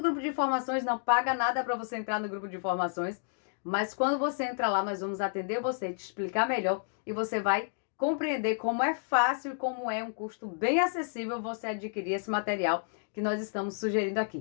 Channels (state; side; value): silent; right; digital silence